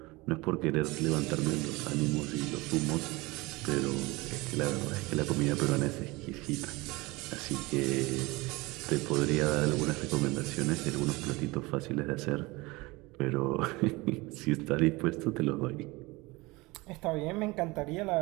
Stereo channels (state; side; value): quieter; left; 22.8 dB